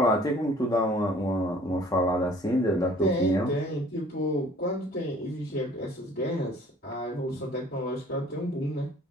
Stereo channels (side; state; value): both; normal; correlation 0.53